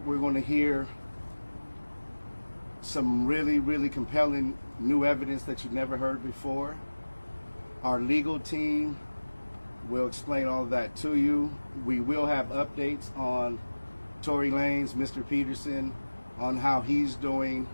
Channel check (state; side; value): inverted; both; correlation -1.00